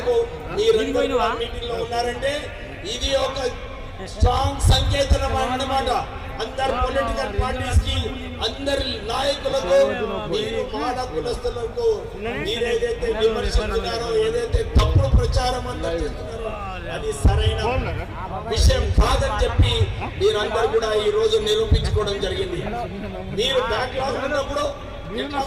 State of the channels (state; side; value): identical; both; correlation 1.00